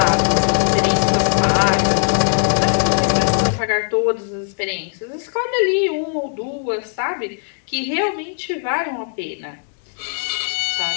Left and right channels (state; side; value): silent; right; 66 dB below the other